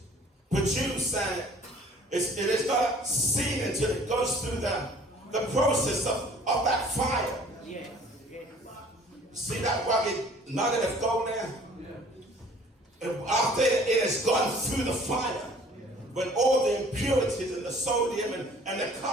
produced and it is not seen until it goes through the process of that fire. See that rugged nugget of gold there? After it has gone through the fire, when all the impurities and the sodium and the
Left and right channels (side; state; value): both; normal; correlation 0.52